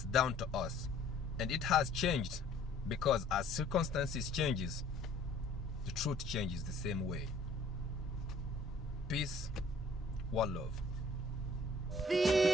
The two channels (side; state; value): both; normal; correlation 0.56